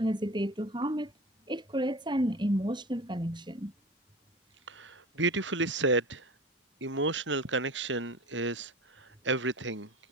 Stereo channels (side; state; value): both; normal; correlation 0.34